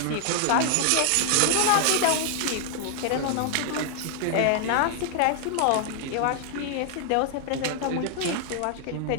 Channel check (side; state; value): both; different; correlation 0.00